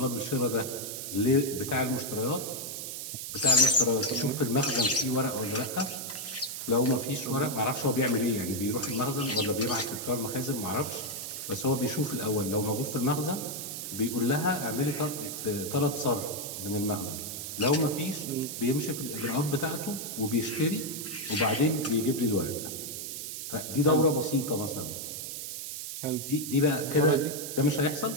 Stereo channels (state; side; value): noise; right; hiss, 6 dB below the sound